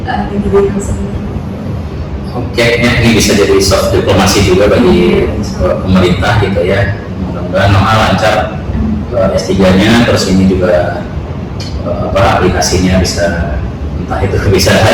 pendidikan sendiri. Oke, ini bisa jadi soft diplomasi juga bagi pemerintah gitu ya. Mudah-mudahan Noha lancar S3-nya, terus ini juga aplikasinya bisa entah itu bisa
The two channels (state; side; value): identical; both; correlation 1.00